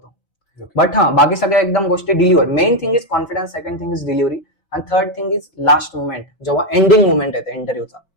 बट हा बाकी सगळ्या एकदम गोष्टी delivery. Main thing is confidence, second thing is delivery, आणि third thing is last moment, जेव्हा एंडिंग मोमेंट येते इंटरव्ह्यूचा,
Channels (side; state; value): right; late; 4.9 ms